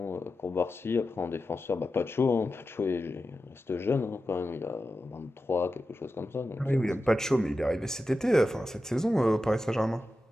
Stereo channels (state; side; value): normal; both; correlation 0.92